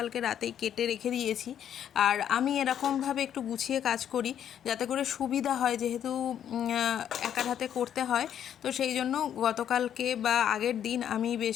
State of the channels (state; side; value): quieter; right; 9.7 dB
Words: রাতেই কেটে রেখে দিয়েছি। আর আমি এরকমভাবে একটু গুছিয়ে কাজ করি যাতে করে সুবিধা হয়, যেহেতু একার হাতে করতে হয়। তো সেই জন্য গতকালকে বা আগের দিন আমি